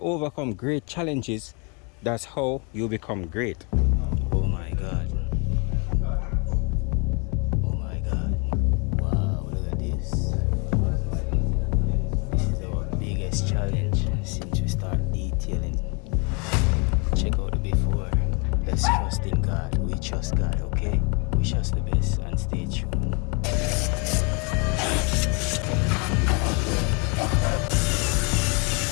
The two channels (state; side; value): quieter; right; 33.8 dB